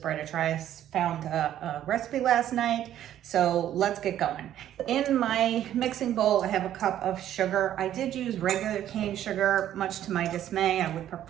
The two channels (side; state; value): left; quieter; 11.5 dB